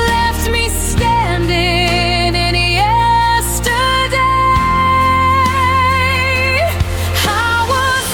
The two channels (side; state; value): both; identical; correlation 1.00